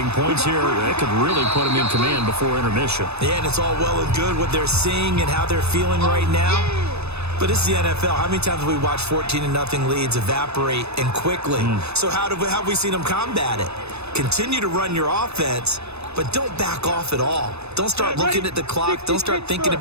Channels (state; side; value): late; left; 0.80 ms